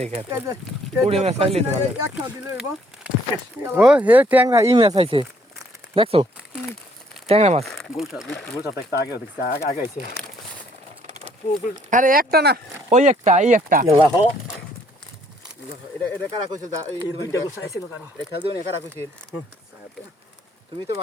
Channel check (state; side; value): normal; both; correlation 0.64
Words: খেত পুরি মাছ আইলে তো ভালো এক খাও দিলে হইব ও হে ট্যাংরা ই মাছ আইছে দেখছো ট্যাংরা মাছ গোলটা একটা আগে দেখছি আগে আইছে আরে একটা না ওই একটা এই একটা লাহ এটা কারা কইছিল এই দুইটা গোল আইছে না কারো খেল দিও না কারা কইছিল তুমি তো